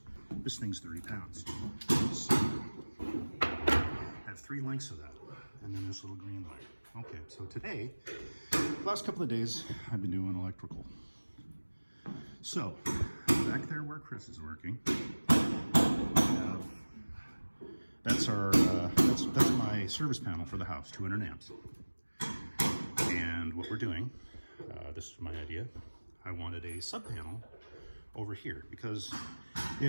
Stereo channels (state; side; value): inverted; both; correlation -1.00